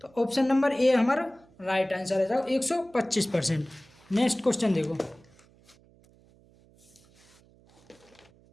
तो ऑप्शन नंबर ए हमारा राइट आंसर है, जाओ 125%। नेक्स्ट क्वेश्चन देखो,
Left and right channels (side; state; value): right; noise; hum, 29 dB below the sound